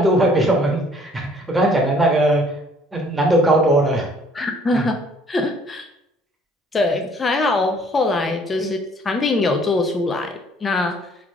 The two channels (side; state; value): both; normal; correlation 0.58